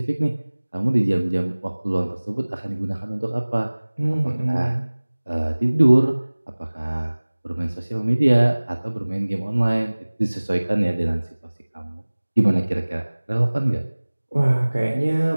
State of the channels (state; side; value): inverted; both; correlation -1.00